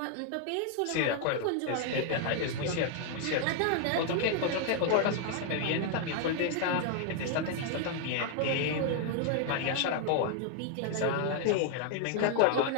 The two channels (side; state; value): both; different; correlation 0.00